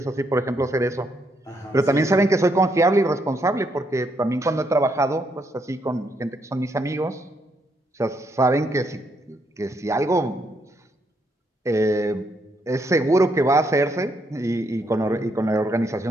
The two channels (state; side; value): normal; both; correlation 0.75